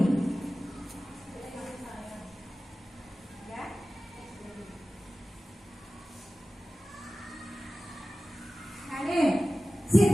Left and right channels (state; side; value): normal; both; correlation 0.96